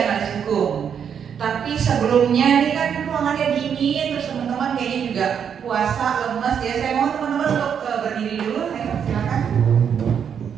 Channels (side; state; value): left; quieter; 7.8 dB